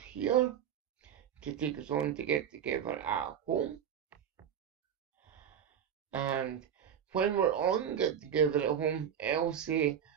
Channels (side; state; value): left; quieter; 8.8 dB